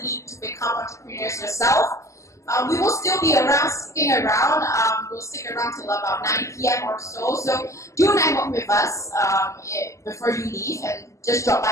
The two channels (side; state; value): right; late; 0.15 ms